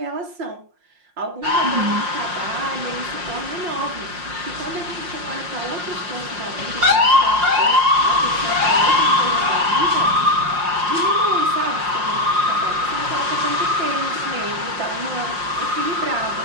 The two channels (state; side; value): late; left; 5.6 ms